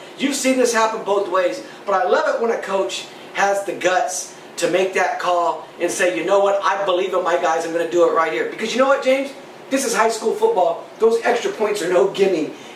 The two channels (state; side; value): identical; both; correlation 1.00